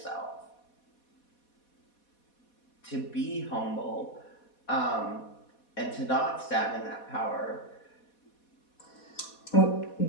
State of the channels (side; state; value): right; late; 4.2 ms